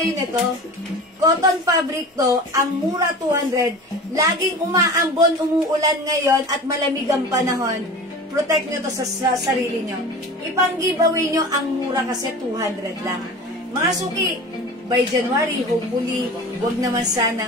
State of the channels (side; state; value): both; normal; correlation 0.35